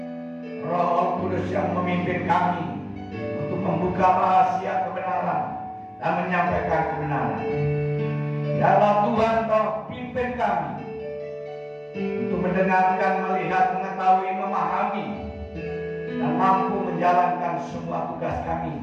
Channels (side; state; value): both; identical; correlation 1.00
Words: Roh Kudus yang memimpin kami untuk membuka rahasia kebenaran dan menyampaikan kebenaran. Biarlah Tuhan Kau pimpin kami untuk mendengarkan, melihat, mengetahui, memahami, dan mampu menjalankan semua tugas kami